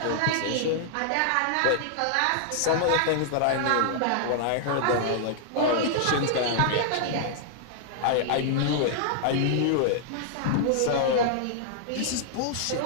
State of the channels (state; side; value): different; both; correlation -0.01